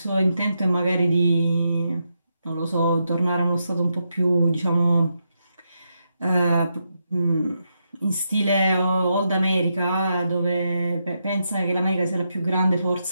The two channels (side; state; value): both; inverted; correlation -0.84